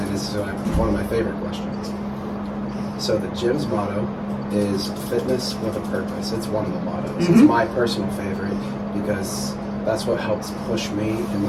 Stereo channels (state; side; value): identical; both; correlation 1.00